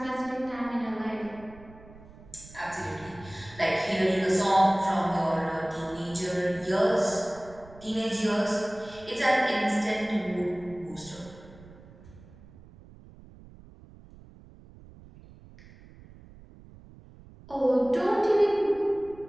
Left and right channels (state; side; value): noise; right; rumble, 21 dB below the sound